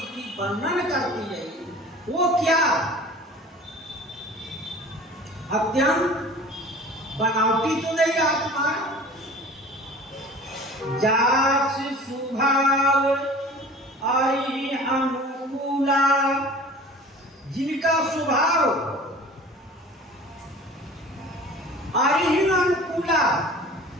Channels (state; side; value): normal; both; correlation 0.43